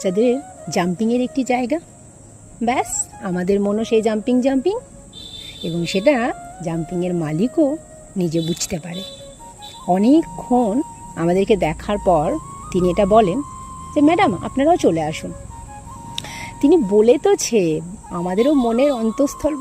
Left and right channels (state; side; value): identical; both; correlation 1.00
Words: জাম্পিংয়ের একটি জায়গা। ব্যাস, আমাদের মনও সেই জাম্পিং এবং সেটা জাম্পিংয়ের মালিকও নিজে বুঝতে পারে। অনেকক্ষণ আমাদেরকে দেখার পর তিনি এটা বলেন যে ম্যাডাম, আপনারাও চলে আসুন। তিনি বলে তোছে, আমাদেরও মনের অন্তঃস্থল